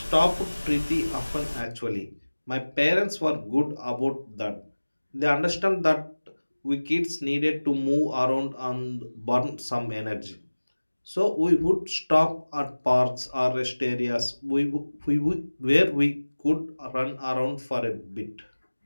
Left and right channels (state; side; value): inverted; both; correlation -1.00